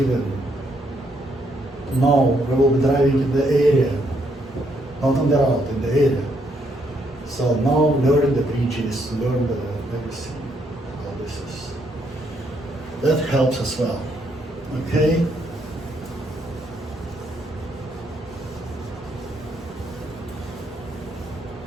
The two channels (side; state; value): both; normal; correlation 0.73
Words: will be driving in the area, not on the route, in the area. So now learn the bridges, learn everything. All this is, that helps as well. Okay.